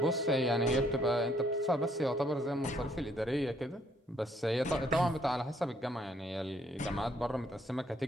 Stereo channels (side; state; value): both; normal; correlation 0.68